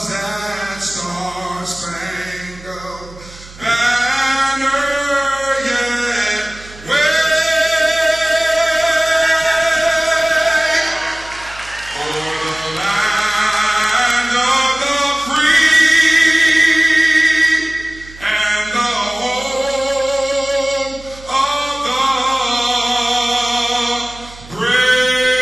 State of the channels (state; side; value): noise; right; hum, 19 dB below the sound